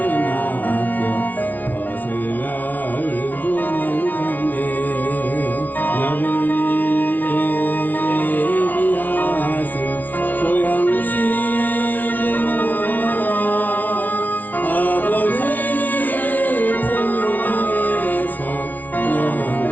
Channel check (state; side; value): late; right; 0.078 ms